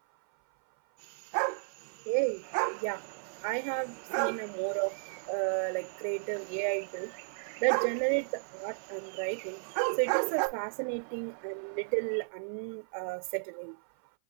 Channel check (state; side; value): silent; left; 55 dB below the other